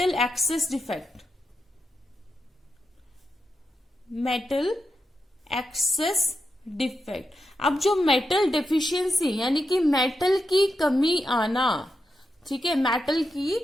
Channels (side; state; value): both; normal; correlation 0.86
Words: excess defect. Metal excess defect. अब जो मेटल डेफिशिएंसी यानी कि मेटल की कमी आना, ठीक है, मेटल की